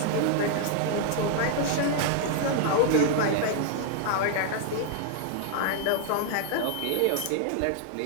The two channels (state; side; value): different; both; correlation 0.00